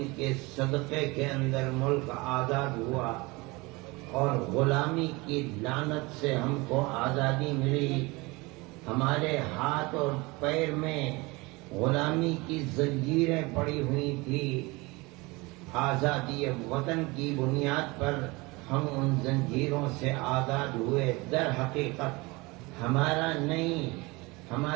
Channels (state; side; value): quieter; left; 24.2 dB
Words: کے صدقے کے اندر ملک آزاد ہوا اور غلامی کی لعنت سے ہم کو آزادی ملی. ہمارے ہاتھ اور پیر میں غلامی کی زنجیریں پڑی ہوئی تھی. آزادی وطن کی بنیاد پر ہم ان زنجیروں سے آزاد ہوئے. در حقیقت ہمارا نہیں،